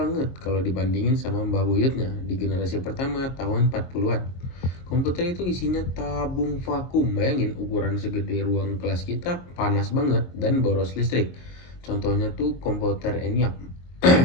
kalau dibandingin sama mbah buyutnya di generasi pertama tahun 40-an. Komputer itu isinya tabung vakum. Bayangin ukuran segede ruang kelas kita, panas banget dan boros listrik. Contohnya tuh komputer ENIAC.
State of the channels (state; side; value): late; right; 22 ms